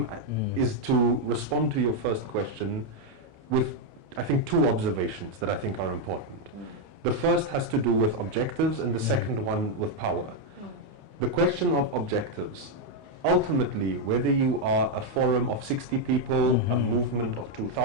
is to respond to your first question with, I think, 2 observations that I think are important. The first has to do with objectives, and the second one with power. The question of objectives. Ultimately, whether you are a forum of 60 people, a movement of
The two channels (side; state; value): left; late; 28 ms